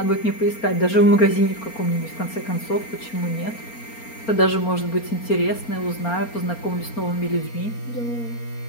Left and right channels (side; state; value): right; late; 4.3 ms